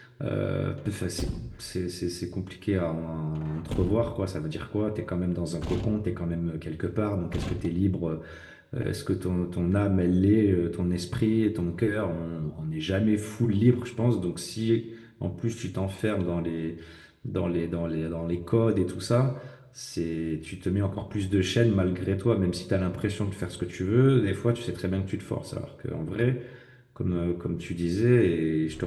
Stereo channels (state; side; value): identical; both; correlation 1.00